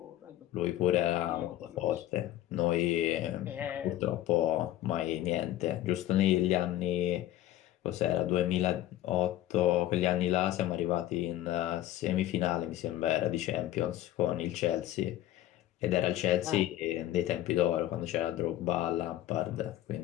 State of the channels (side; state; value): right; quieter; 13.7 dB